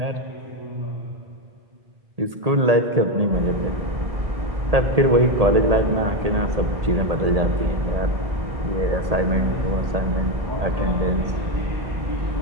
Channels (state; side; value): late; left; 1.8 ms